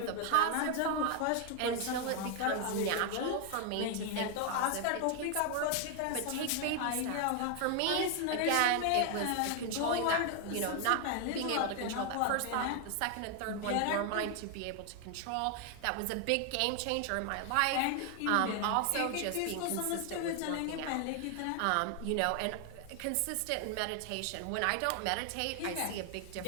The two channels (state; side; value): different; both; correlation 0.01